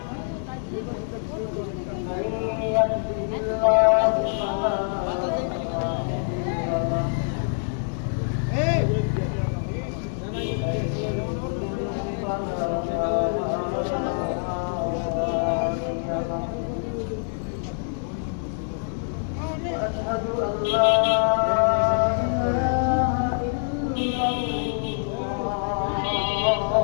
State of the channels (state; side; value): silent; right; digital silence